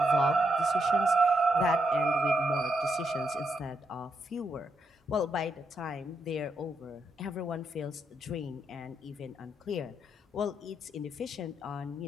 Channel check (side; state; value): both; normal; correlation 0.80